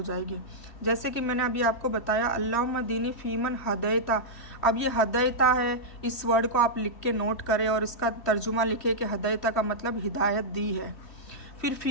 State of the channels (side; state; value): right; late; 3.1 ms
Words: जाएगी। जैसे कि मैंने अभी आपको बताया अल्लाहुम्मा दीनी फ़ीमन हदैता। अब ये हदैता है, इस वर्ड को आप लिख के नोट करें और इसका तर्जुमा लिखे कि हदैता का मतलब हिदायत दी है। फिर